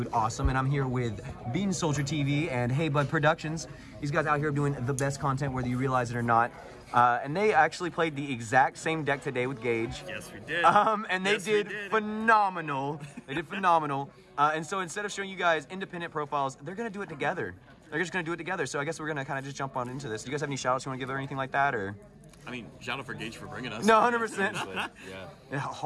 Awesome, and I'm here with Bean Soldier TV and Hey Bud Productions. These guys out here doing the best content, whether you realize it or not. And they actually played the exact same deck today with Gage. Yes, we did. And they did phenomenal. They did phenomenal. And so instead of showing you guys independent profiles, they're going to do it together. They're just going to do it together. So I guess we're going to kind of just jump on into this. Do you guys have any shout outs you want to give or anything like that? Or? I mean, shout out for Gage for bringing us. No, 100%. Yeah.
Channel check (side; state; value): both; identical; correlation 1.00